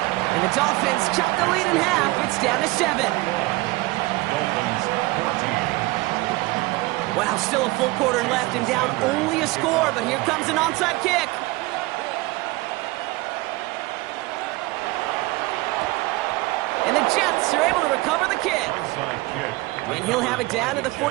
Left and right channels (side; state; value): left; quieter; 21.7 dB